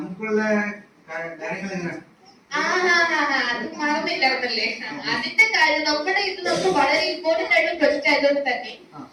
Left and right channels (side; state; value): both; identical; correlation 1.00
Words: കാര്യങ്ങൾ എങ്ങനെ? അത് മറന്നില്ലായിരുന്നല്ലേ. അതിന്റെ കാര്യം നമ്മുടെ ഇത് നമുക്ക് വളരെ ഇമ്പോർട്ടന്റ് ആയിട്ടുള്ള പ്രൊജക്ട് ആയതുകൊണ്ട് തന്നെ